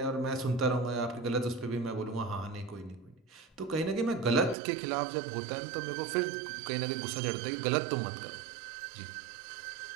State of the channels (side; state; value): left; drops out; at 4.5 s